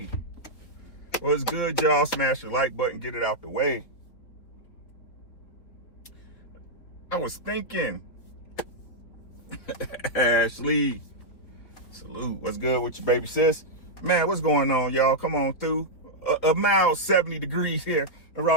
What's good, y'all? Smash the like button, get it out the way. I was thinking, Ashley, salute. What's good with you, baby sis? Man, what's going on, y'all? Come on through. A mild 70 degrees here in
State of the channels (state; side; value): late; right; 4.4 ms